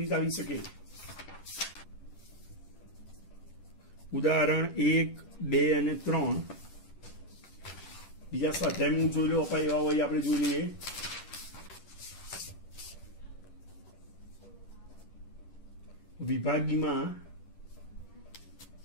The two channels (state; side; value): late; right; 10 ms